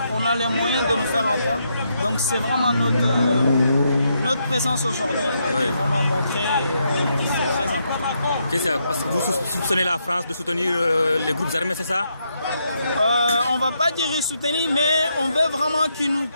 a les moyens de nous faire entendre. Donc c'est vraiment notre présence aujourd'hui qui est vraiment montrée et c'est très important. Parce que vous soupçonnez la France de soutenir les groupes armés, c'est ça? On ne va pas dire soutenir, mais on veut vraiment qu'ils nous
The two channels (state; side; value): inverted; both; correlation -0.78